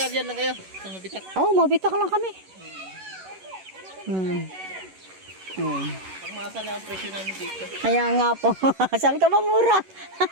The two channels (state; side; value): late; left; 11 ms